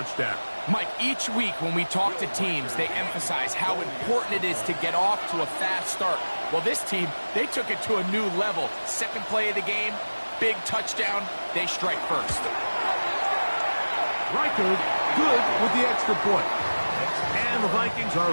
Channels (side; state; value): both; inverted; correlation -1.00